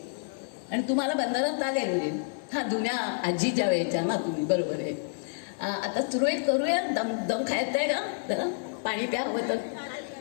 आणि तुम्हाला बंधनात आले म्हणजे हां जुन्या आजीच्या वेळेच्या ना तुम्ही, बरोबर आहे. आता सुरळीत करूया. दम दम खायचं आहे का जरा, पाणी प्या हवं तर.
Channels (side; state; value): right; silent; digital silence